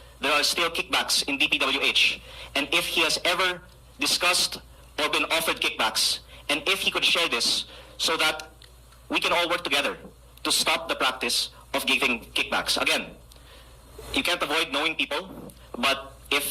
there are still kickbacks in DPWH, and if he has ever discussed or been offered kickbacks, and if he could share this so that we can all work together to stop the practice of giving kickbacks. Again, you can't avoid knowing people, but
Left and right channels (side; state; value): both; identical; correlation 1.00